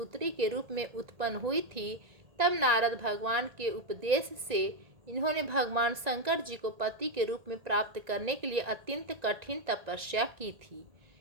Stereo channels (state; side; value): late; left; 1.9 ms